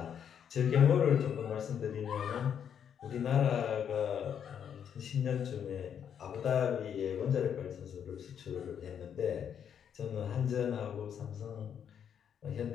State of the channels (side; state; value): right; quieter; 8.4 dB